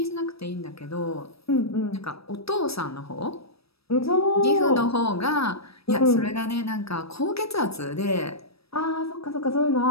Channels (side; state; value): right; late; 0.77 ms